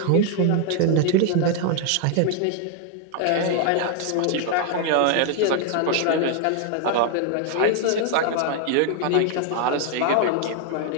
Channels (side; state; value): both; different; correlation 0.00